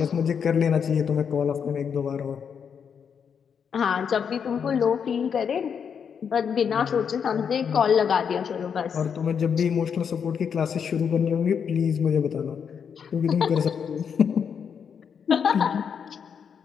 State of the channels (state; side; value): quieter; right; 7.1 dB